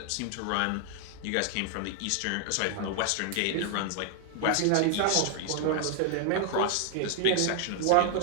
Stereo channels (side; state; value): both; different; correlation 0.00